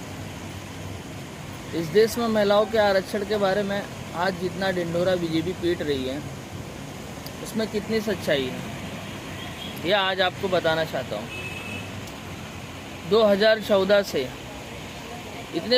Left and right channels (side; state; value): both; identical; correlation 1.00